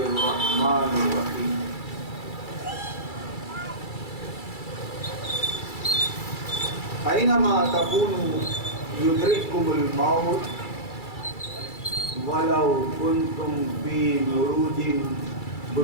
الرحمن الرحيم. أينما تكونوا يدرككم الموت ولو كنتم في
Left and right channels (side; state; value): right; late; 2.3 ms